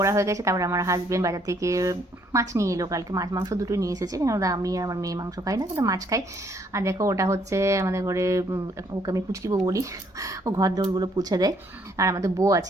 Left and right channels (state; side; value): normal; both; correlation 0.67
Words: হয়ে গেছে। তারপরে আমার হাজবেন্ড বাজার থেকে মাছ নিয়ে এলো। কালকে মাছ মাংস দুটোই নিয়ে এসেছে, কেন আমি আর আমার মেয়ে মাংস খাই না, কিন্তু মাছ খাই। আর দেখো, ওটা হচ্ছে আমাদের ঘরে, ওকে আমি পুচকি বউ বলি। ও ঘর দৌড়গুলো পুছে দেয়। আর আমাদের বউ